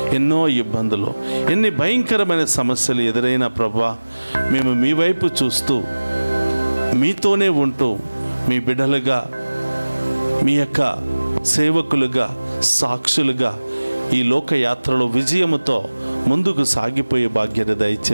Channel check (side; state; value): both; inverted; correlation -1.00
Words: ఎన్నో ఇబ్బందులు, ఎన్ని భయంకరమైన సమస్యలు ఎదురైనా ప్రభా, మేము మీ వైపు చూస్తూ మీతోనే ఉంటూ మీ బిడ్డలుగా, మీ యొక్క సేవకులుగా, సాక్షులుగా ఈ లోకయాత్రలో విజయముతో ముందుకు సాగిపోయే భాగ్యత